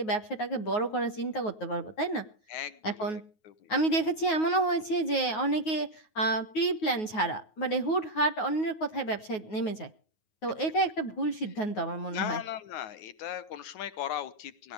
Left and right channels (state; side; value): late; right; 9.4 ms